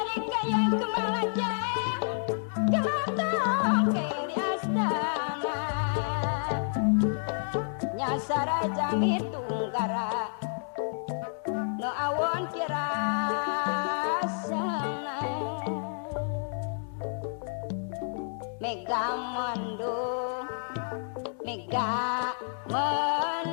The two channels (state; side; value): silent; right; 58 dB below the other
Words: kemalaja kematong di astana nyasara jami tunggara no awon kirasana mega mendung